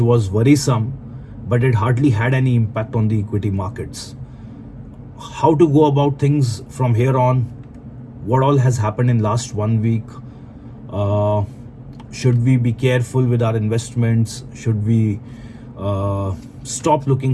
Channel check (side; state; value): both; identical; correlation 1.00